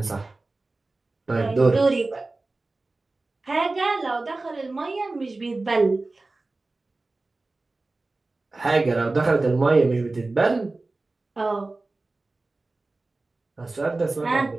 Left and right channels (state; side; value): quieter; left; 3.3 dB